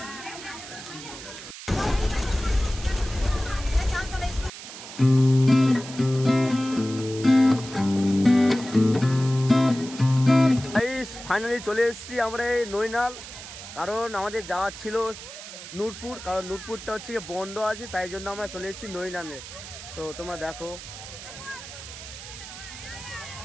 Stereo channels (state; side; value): noise; right; hiss, 13 dB below the sound